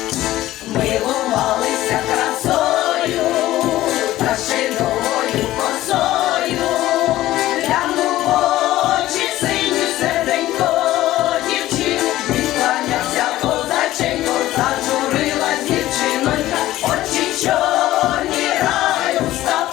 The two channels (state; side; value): quieter; right; 15.3 dB